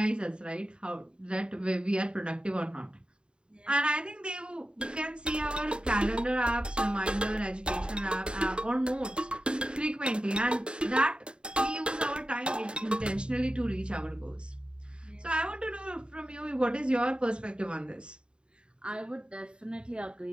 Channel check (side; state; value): left; late; 0.052 ms